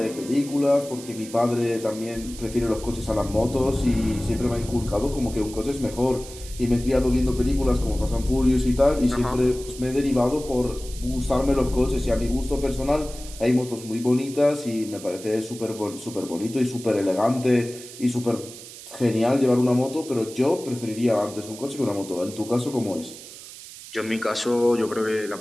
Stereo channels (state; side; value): noise; right; hiss, 15 dB below the sound